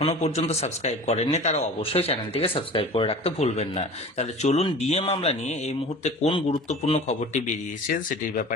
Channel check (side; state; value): both; normal; correlation 0.39